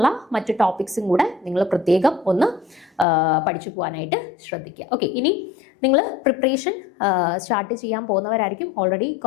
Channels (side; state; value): right; drops out; at 3.1 s